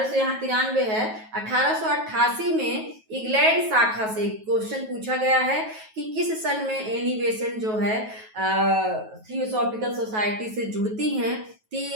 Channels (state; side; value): late; left; 9.3 ms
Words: यहाँ 93 है, 1888 में इंग्लैंड शाखा से क्वेश्चन पूछा गया है कि किस सन में एनी बेसेंट जो है थियोसॉफिकल सोसाइटी से जुड़ती हैं। तो